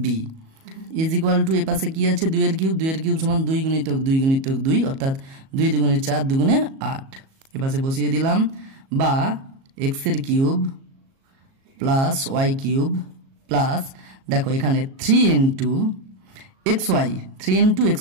B is equal to এ পাশে কি আছে 2 এর কিউব, 2 এর কিউব সমান 2 গুণিতক 2 গুণিতক 2 অর্থাৎ 2 দুগুণে 4 দুগুণে 8, এ পাশে বসিয়ে দিলাম, বা এক্স এর cube plus Y cube plus দেখো এখানে 3 into x y, 3 into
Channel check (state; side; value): late; left; 37 ms